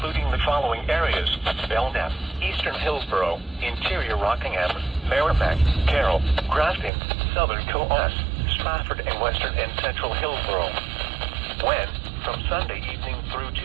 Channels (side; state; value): left; drops out; at 6.9 s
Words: the following areas: Belknap, Eastern Hillsborough, Interior Rockingham, Merrimack, Carroll, Grafton, Southern Coos, Stratford, and Western and Central Hillsborough. When? From Sunday evening through